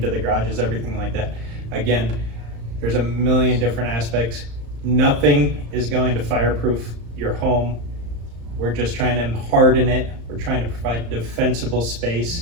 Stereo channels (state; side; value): late; left; 35 ms